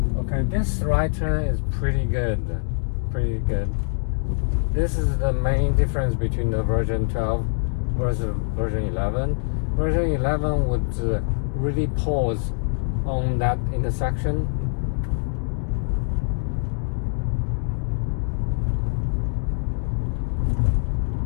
Okay, this right turn is pretty good. Pretty good. This is the main difference between the version 12 versus version 11. Version 11 would really pause on that intersection.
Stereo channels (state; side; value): silent; right; digital silence